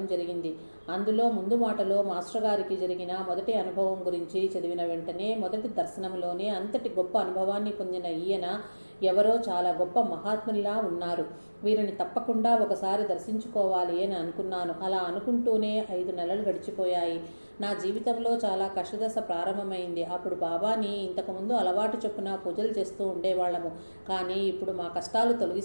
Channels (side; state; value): both; inverted; correlation -1.00